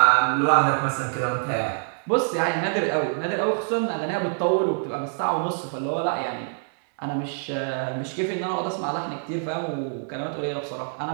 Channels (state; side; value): silent; left; digital silence